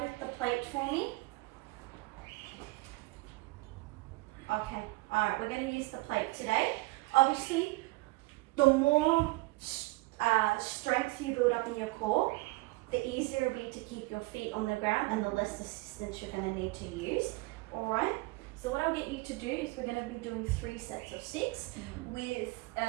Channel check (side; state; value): left; quieter; 22.6 dB